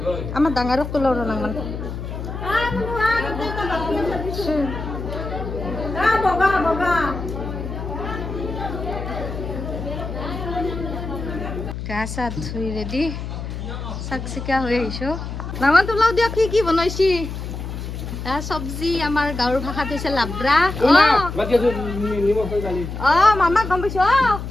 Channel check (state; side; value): noise; left; hum, 7 dB below the sound